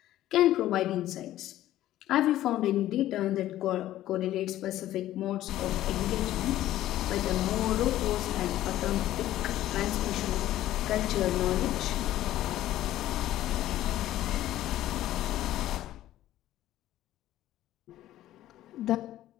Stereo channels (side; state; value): right; quieter; 13.9 dB